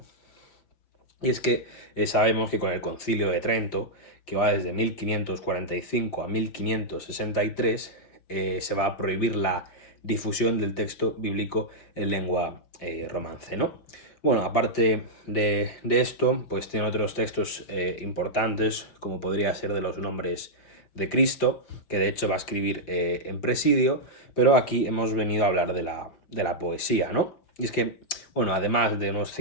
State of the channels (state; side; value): late; right; 5.7 ms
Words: Y es que sabemos que con el Concilio de Trento, que va desde 1545 a 1563, se va a prohibir la difusión del texto bíblico en lengua romance, ¿no? Bueno, aparte de esto, pues tiene otros textos importantes, como podría ser de los nombres de Cristo, que de hecho va a escribir en Presidio, pero aquí hemos venido a hablar de la poesía, ¿no? Y es que, bueno, además de unos